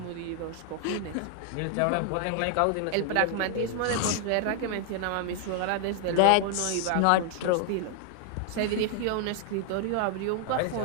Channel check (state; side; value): different; both; correlation 0.00